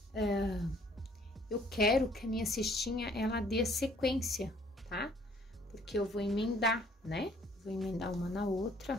Eu quero que a minha cestinha, ela dê sequência, tá? Porque eu vou emendar, né? Vou emendar uma na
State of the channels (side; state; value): both; normal; correlation 0.60